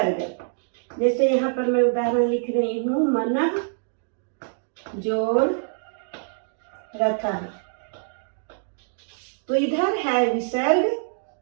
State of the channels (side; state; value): left; silent; digital silence